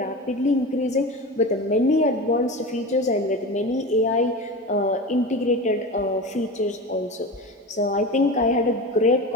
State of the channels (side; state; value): both; normal; correlation 0.28